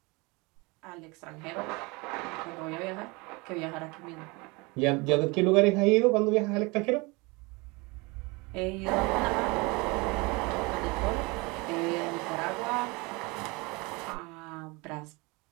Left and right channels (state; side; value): quieter; left; 26.3 dB